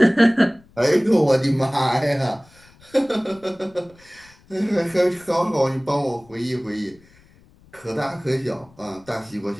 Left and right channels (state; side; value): noise; left; rumble, 28 dB below the sound